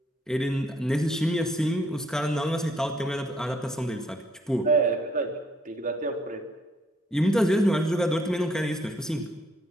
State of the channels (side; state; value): both; normal; correlation 0.68